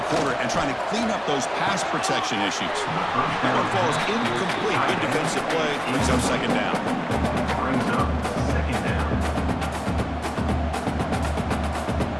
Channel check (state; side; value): identical; both; correlation 1.00